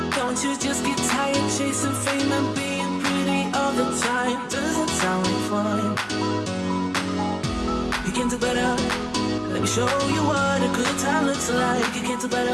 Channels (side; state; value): both; identical; correlation 1.00